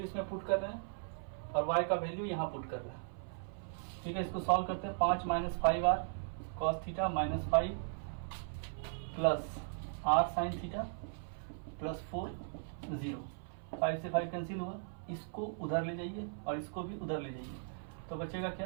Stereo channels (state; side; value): silent; left; 53 dB below the other